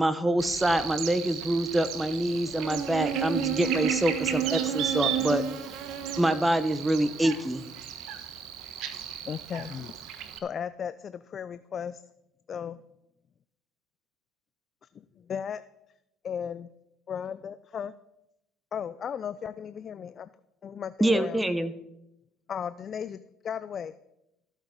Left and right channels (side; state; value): both; normal; correlation 0.78